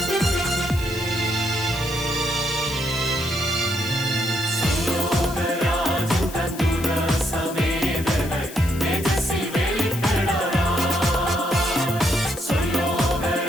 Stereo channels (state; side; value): noise; left; hiss, 15 dB below the sound